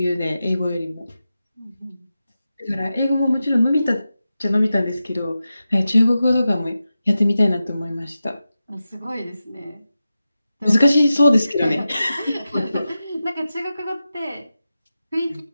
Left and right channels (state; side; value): inverted; both; correlation -0.92